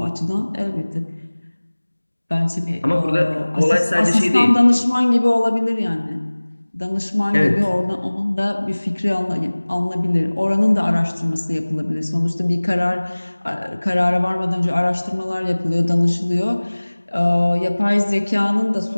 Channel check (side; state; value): both; inverted; correlation -1.00